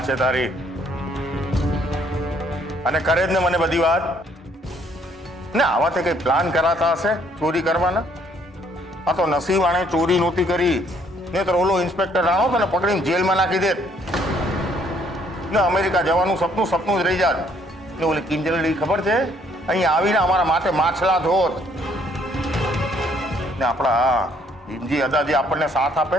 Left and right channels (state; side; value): normal; both; correlation 0.65